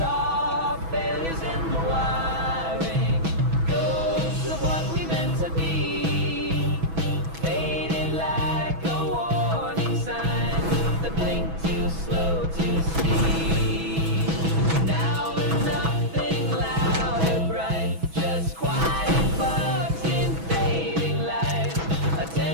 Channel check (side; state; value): left; late; 6.1 ms